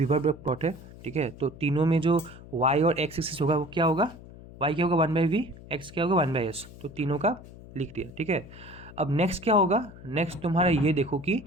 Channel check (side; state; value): left; noise; hum, 18 dB below the sound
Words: प्लॉट है, ठीक है। तो तीनों में जो y और x एक्सिस होगा वो क्या होगा, y क्या होगा 1/v, x क्या होगा 1/s। तो तीनों का लिख दिया, ठीक है। अब नेक्स्ट क्या होगा, नेक्स्ट तुम्हारा ये देखो कि